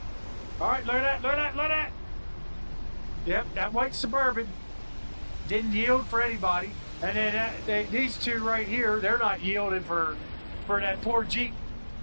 Alright, look at that. Yep, that white Suburban didn't yield for anybody. And then these two right here, they're not yielding for that poor Jeep.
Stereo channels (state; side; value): inverted; both; correlation -1.00